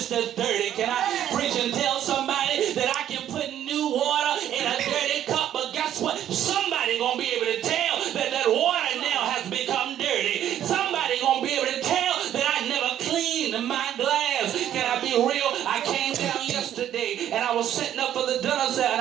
as dirty. Can I preach and tell somebody that I can put new water in a dirty cup? But guess what? Somebody gonna be able to tell that that water now has become dirty. Somebody gonna be able to tell that I never cleaned my glass. Can I be real? I came down yesterday and I was setting up for the dinner set and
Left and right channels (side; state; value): left; quieter; 11.0 dB